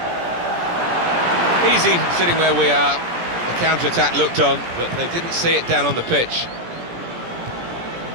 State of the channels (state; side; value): late; left; 17 ms